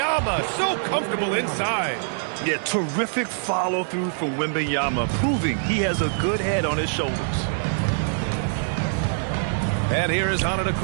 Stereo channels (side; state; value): left; silent; digital silence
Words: so comfortable inside. Yeah, terrific follow-through from Wembanyama, proving he has a good head on his shoulders. And here is